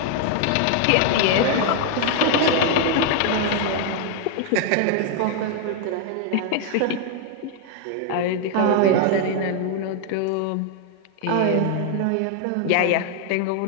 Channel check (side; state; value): both; different; correlation 0.00